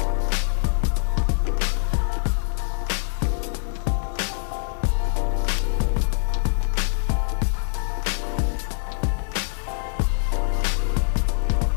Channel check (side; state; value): right; silent; digital silence